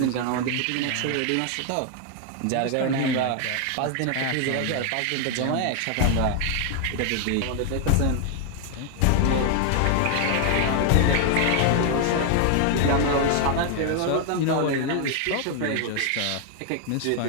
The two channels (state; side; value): different; both; correlation 0.00